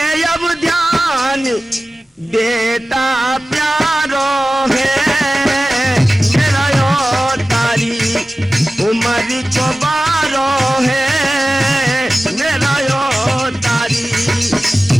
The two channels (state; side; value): normal; both; correlation 0.96